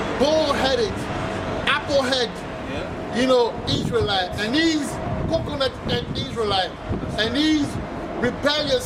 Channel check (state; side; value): identical; both; correlation 1.00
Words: bull-headed, apple-head, you know, Israelite, and these coconut head Israelite, and these rebellious